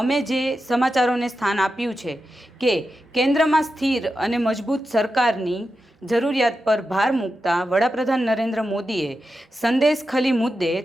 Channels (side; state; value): both; normal; correlation 0.90